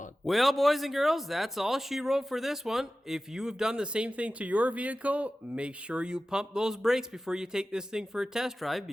Well, boys and girls, that's all she wrote for this one. If you have done the same thing to your vehicle, make sure you pump those brakes before you take this thing for a test drive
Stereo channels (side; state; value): both; normal; correlation 0.95